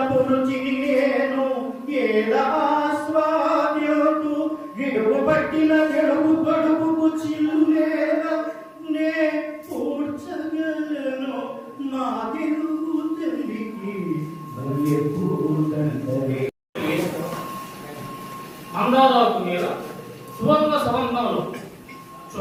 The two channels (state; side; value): identical; both; correlation 1.00